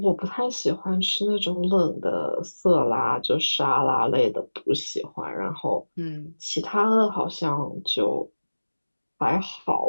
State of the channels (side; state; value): both; inverted; correlation -1.00